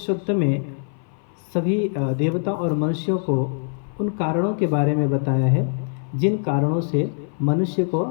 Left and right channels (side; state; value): right; silent; 58 dB below the other